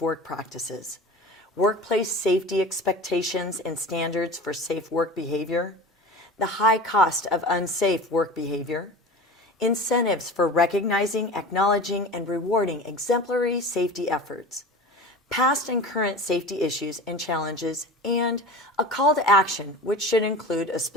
practices, workplace safety expectations and standards for safe work behavior, the high cost of unsafe work behavior, incentives for recognizing, acknowledging, and rewarding exemplary safety efforts, past and current safety issues and challenges, and a call to action, which should include a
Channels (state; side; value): normal; both; correlation 0.35